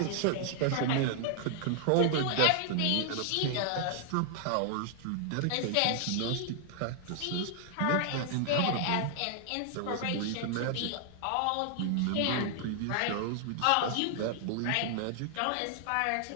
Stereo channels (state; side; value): different; both; correlation 0.00